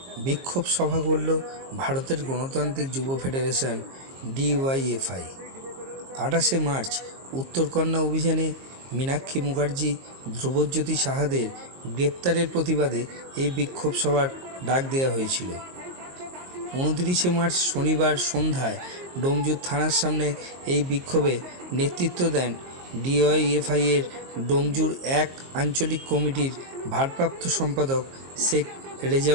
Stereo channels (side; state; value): left; late; 22 ms